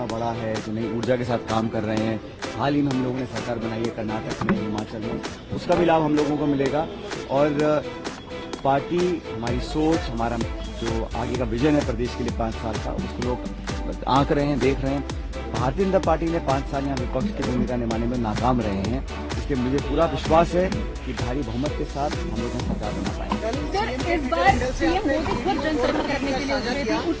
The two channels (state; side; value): identical; both; correlation 1.00